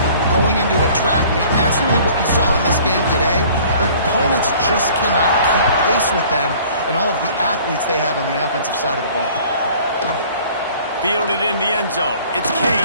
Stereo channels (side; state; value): both; inverted; correlation -0.51